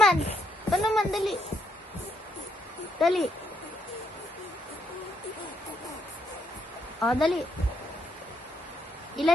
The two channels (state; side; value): normal; both; correlation 0.75